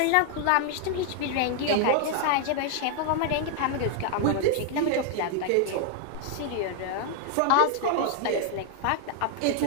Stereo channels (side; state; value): both; different; correlation 0.00